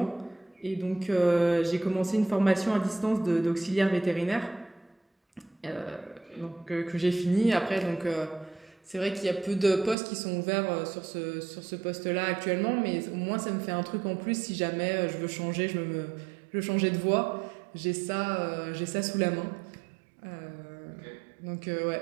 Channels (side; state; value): left; drops out; at 10.0 s